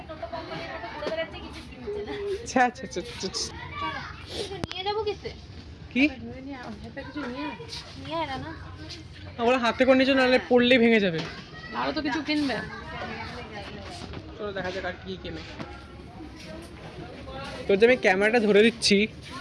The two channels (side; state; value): both; identical; correlation 1.00